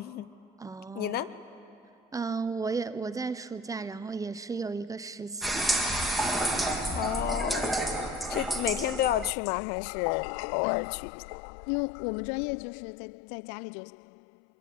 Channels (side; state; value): right; drops out; at 9.3 s